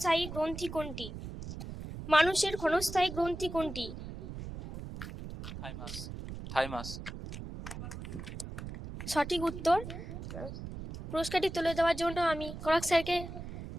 গ্রন্থি কোনটি? মানুষের ক্ষণস্থায়ী গ্রন্থি কোনটি? থাইমাস। থাইমাস। সঠিক উত্তর। পুরস্কারটি তুলে দেওয়ার জন্য আমি করাক স্যারকে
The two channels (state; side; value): noise; right; rumble, 9 dB below the sound